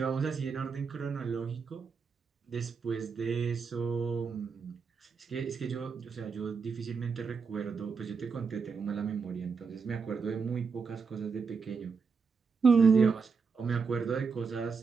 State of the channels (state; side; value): quieter; left; 5.3 dB